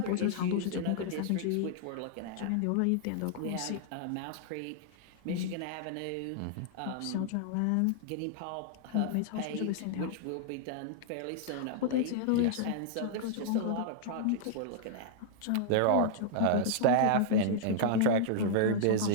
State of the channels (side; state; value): both; different; correlation -0.01